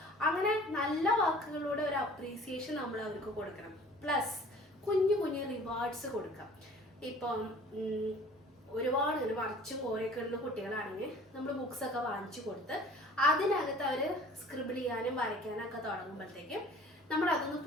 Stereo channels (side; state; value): both; normal; correlation 0.49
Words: അങ്ങനെ നല്ല വാക്കുകളിലൂടെ ഒരു അപ്രീസിയേഷൻ നമ്മൾ അവർക്ക് കൊടുക്കണം. പ്ലസ് കുഞ്ഞു കുഞ്ഞു റിവാർഡ്സ് കൊടുക്കാം. ഇപ്പം ഒരുപാട് ഇങ്ങനെ വരച്ചും കോരയൊക്കെ ഉള്ള കുട്ടികളാണെങ്കിൽ നമ്മൾ ബുക്സൊക്കെ വാങ്ങിച്ചു കൊടുത്ത് അതിനകത്ത് അവർ സ്ക്രിബിൾ ചെയ്യാനും വരയ്ക്കാനൊക്കെ തുടങ്ങുമ്പോഴത്തേക്കും നമ്മൾ അതൊന്ന്